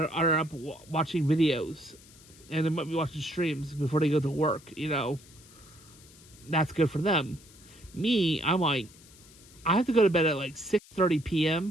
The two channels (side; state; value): left; noise; hiss, 23 dB below the sound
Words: up watching videos, and they might be watching streams before they go to work. That's good for them. Me, I'm like, I have to go to bed at like 6:30